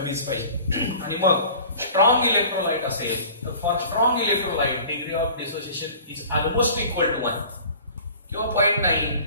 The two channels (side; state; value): both; inverted; correlation -0.44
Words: पाहिजे. आणि मग स्ट्रॉंग इलेक्ट्रोलाइट असेल तर for strong electrolyte degree of dissociation is almost equal to 1 किंवा 0.9,